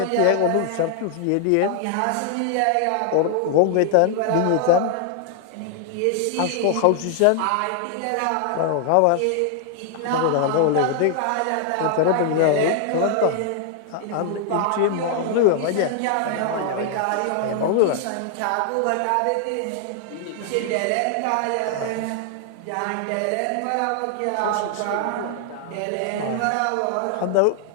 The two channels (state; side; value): different; both; correlation 0.00